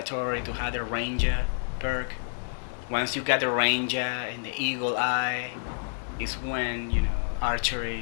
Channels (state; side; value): silent; right; 59 dB below the other